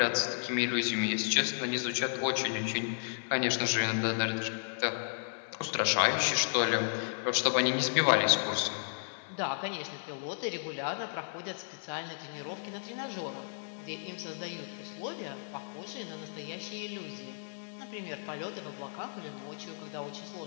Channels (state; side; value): silent; right; 55 dB below the other